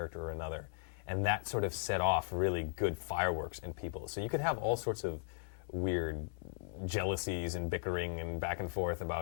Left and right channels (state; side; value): silent; right; digital silence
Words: or another, and that sort of set off really good fireworks in people. So you could have all sorts of weird jealousies and bickering and back and forth